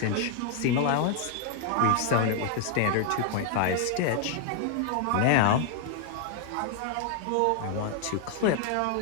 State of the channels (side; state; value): both; different; correlation 0.00